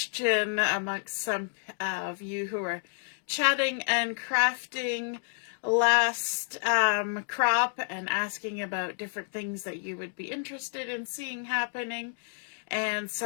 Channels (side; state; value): right; silent; digital silence